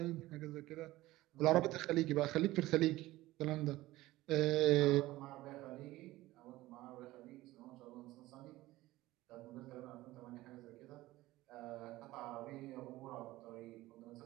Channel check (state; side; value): quieter; left; 17.5 dB